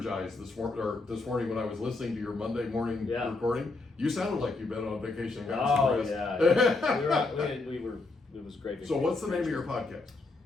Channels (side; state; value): right; quieter; 3.4 dB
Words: this morning when I was listening to your Monday morning recording. You sounded like you've been on vacation and gotten some rest. It was great. So what's the name of your podcast?